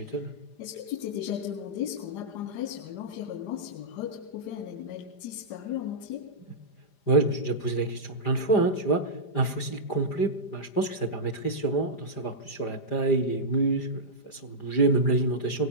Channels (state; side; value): late; right; 5.0 ms